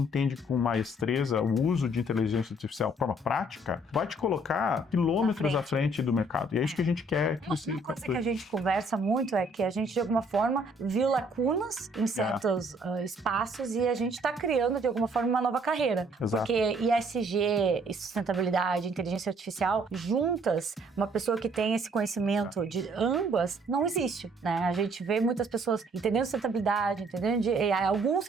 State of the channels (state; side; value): normal; both; correlation 0.62